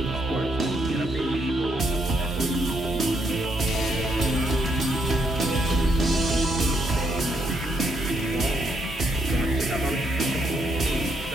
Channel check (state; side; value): normal; both; correlation 0.75